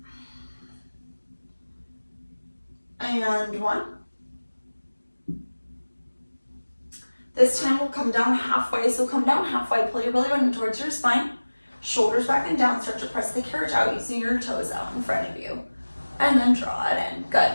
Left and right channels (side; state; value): both; inverted; correlation -1.00